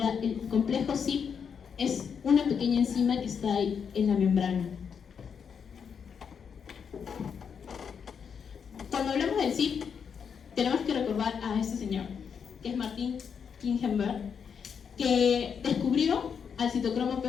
el complejo CYP es una pequeña enzima que está ahí en la membrana. Cuando hablamos del CYP, tenemos que recordar a este señor. que es Martin Kingenberg, que descubrió al citocromo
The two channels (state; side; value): quieter; right; 6.9 dB